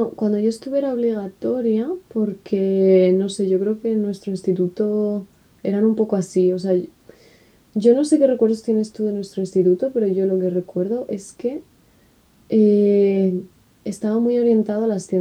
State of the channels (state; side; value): identical; both; correlation 1.00